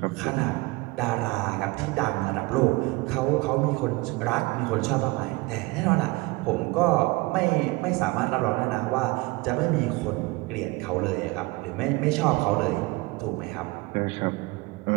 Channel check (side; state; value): left; quieter; 23.6 dB